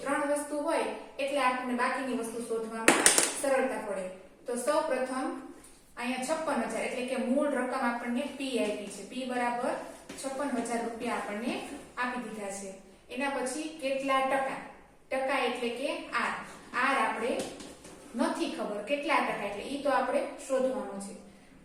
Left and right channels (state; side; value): identical; both; correlation 1.00